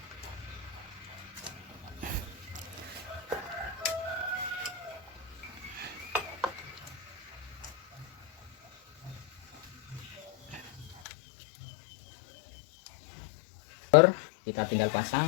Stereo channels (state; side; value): drops out; right; at 11.0 s